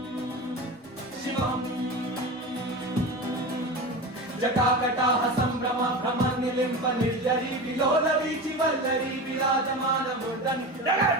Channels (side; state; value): both; normal; correlation 0.27